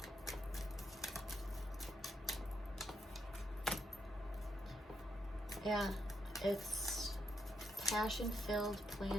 Yeah, it's passion-filled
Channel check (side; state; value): both; normal; correlation 0.80